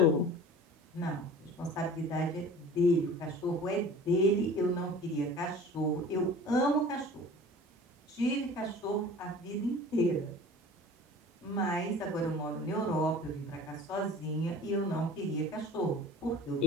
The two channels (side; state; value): both; normal; correlation 0.42